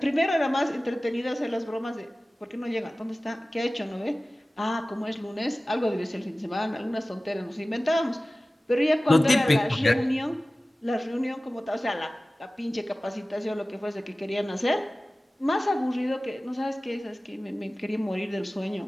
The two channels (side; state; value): both; normal; correlation 0.97